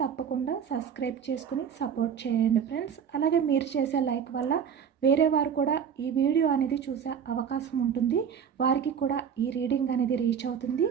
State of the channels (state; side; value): quieter; left; 7.6 dB